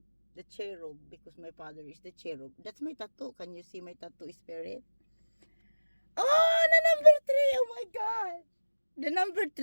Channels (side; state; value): both; inverted; correlation -1.00